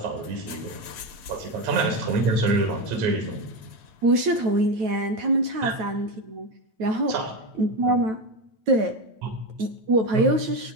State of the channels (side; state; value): left; late; 9.2 ms